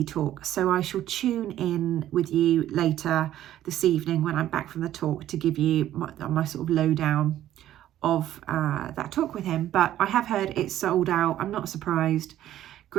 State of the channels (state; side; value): quieter; left; 12.6 dB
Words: talk. So I shall tune in with you later this evening when I'm back from the talk to give you my sort of lowdown of that talk with him. But I have heard it's sold out. I'm not surprised.